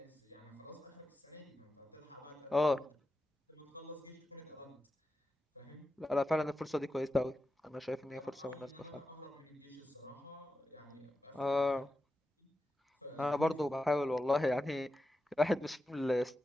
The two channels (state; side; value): normal; both; correlation 0.91